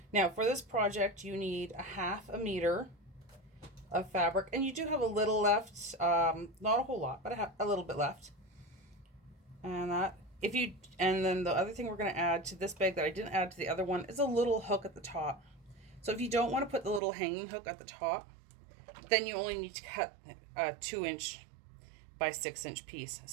Now for this project, you need a 1/2 meter of fabric, and you do have a little left, not a whole lot, but I have a little bit left. And then the other thing we're going to add to this bag that I didn't add to the other one is a little hook at the top. So if you don't want to put the little hanging hook at the top, then you only need to cut a 2-inch by 6-inch piece.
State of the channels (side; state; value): left; drops out; at 17.0 s